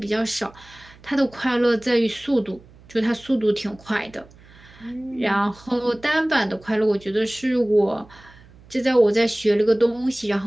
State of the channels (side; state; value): right; noise; hum, 24 dB below the sound